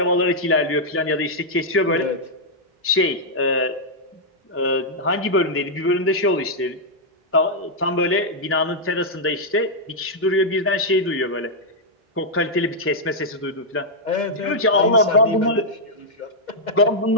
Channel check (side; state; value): both; normal; correlation -0.05